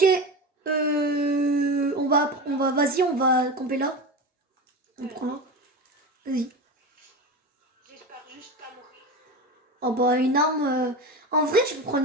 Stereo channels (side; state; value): both; normal; correlation 0.25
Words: Vas-y, on va camper là. On prend là. Vas-y. J'espère juste pas mourir. Oh bah une arme... En vrai, je peux prendre